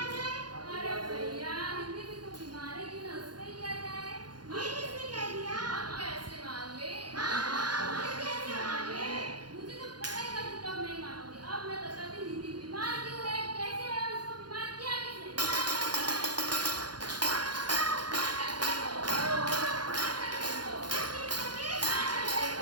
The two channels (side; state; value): left; late; 0.70 ms